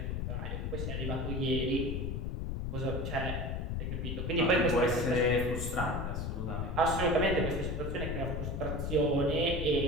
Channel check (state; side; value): noise; left; rumble, 2 dB below the sound